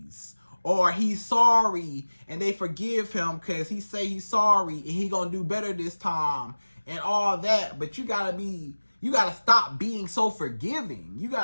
or he's sorry and they forgive him because he say he's sorry and he gonna do better this time and all that. But you gotta stop being so forgiving. You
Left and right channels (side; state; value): both; inverted; correlation -1.00